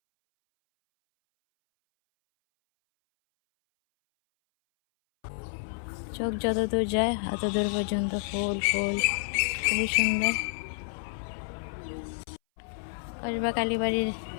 চোখ যত দূর যায় এত দূর পর্যন্ত ফুল ফুল, খুবই সুন্দর। কসবা কালীবাড়ির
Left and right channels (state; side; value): silent; right; 58 dB below the other